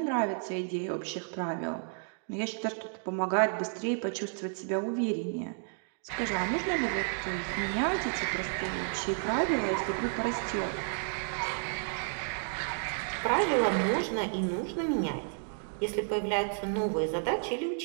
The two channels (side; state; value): left; silent; 57 dB below the other